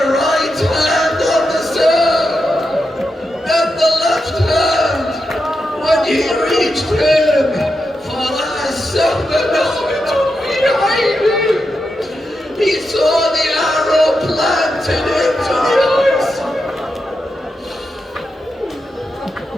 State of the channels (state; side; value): normal; both; correlation 0.87